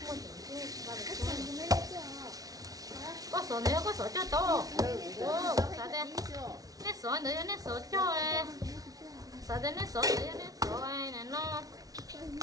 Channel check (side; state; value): left; late; 0.18 ms